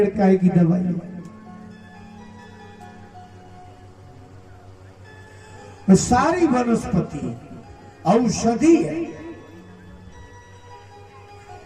काय की दवाई है। सारी वनस्पति औषधि है।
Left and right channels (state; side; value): identical; both; correlation 1.00